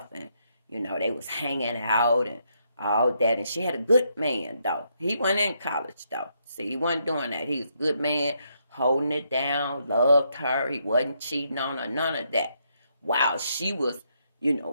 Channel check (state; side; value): inverted; both; correlation -0.76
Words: and they was hanging out and all that. And she had a good man, though. He wasn't in college, though. See, he wasn't doing that. He was a good man, holding it down, loved her. He wasn't cheating on her, none of that. While she was,